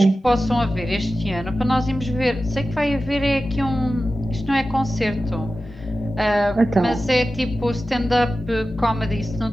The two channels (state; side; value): normal; both; correlation 0.94